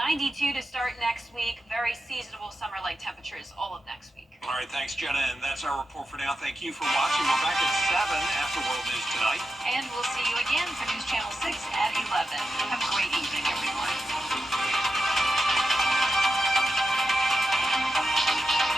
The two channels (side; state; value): both; normal; correlation 0.89